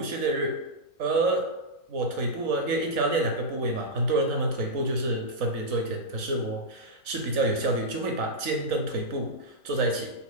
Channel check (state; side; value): late; left; 3.9 ms